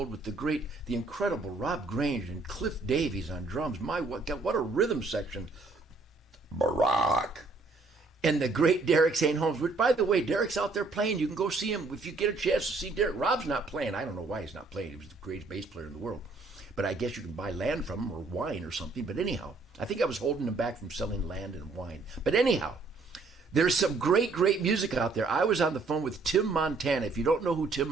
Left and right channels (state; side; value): quieter; left; 3.7 dB